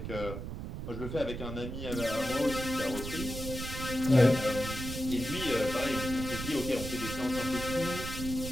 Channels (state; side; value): noise; right; rumble, 7 dB below the sound